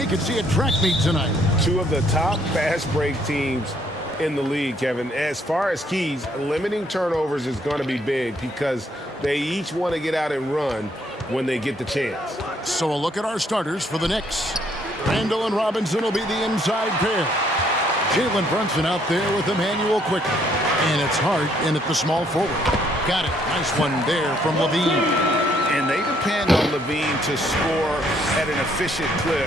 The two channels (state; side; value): normal; both; correlation 0.68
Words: could see a track meet tonight. Two of the top fast break teams in the league, Kevin. As far as keys, limiting turnovers is going to be big because they each want to get out and run when they get the chance. So a look at our starters for the Knicks. Randall and Robinson will be the inside pair. Jalen Brunson out there with Emmanuel Quickly. And it's Hart in at the small forward. Got it. Nice one there from LaVine. And they depend on LaVine to score at an efficient